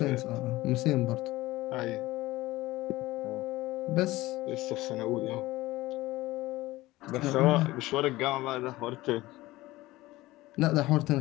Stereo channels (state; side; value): quieter; right; 18.5 dB